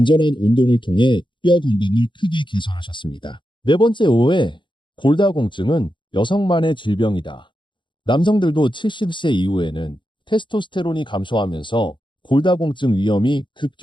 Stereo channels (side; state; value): right; late; 0.23 ms